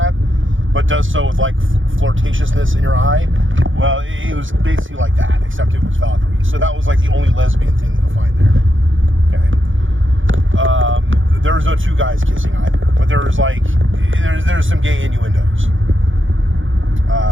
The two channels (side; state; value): left; late; 0.57 ms